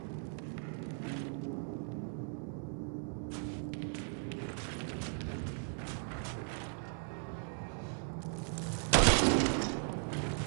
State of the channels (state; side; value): silent; left; 53 dB below the other